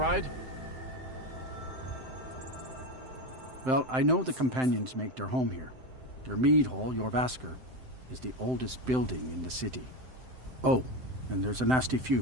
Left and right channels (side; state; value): left; late; 7.8 ms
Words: Well, I know the companions make their home here. Their mead hall, Jorvaskr, is the oldest building in the city. Oh, and there's a nasty